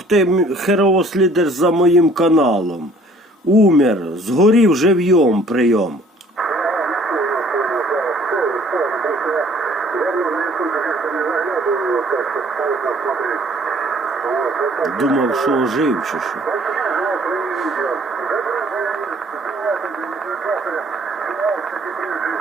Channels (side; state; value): both; normal; correlation 0.56